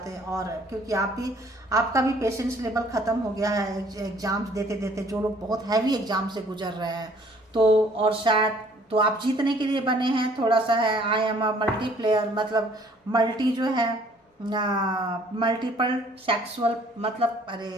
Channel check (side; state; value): both; normal; correlation 0.58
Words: और क्योंकि आपका भी पेशेंस लेवल खत्म हो गया है एग्जाम्स देते देते, जो लोग बहुत हैवी एग्जाम से गुजर रहे हैं। तो और शायद तो आप जीतने के लिए बने हैं, थोड़ा सा है I am a multi player, मतलब मल्टी जो है मल्टीपल सेक्सुअल, मतलब अरे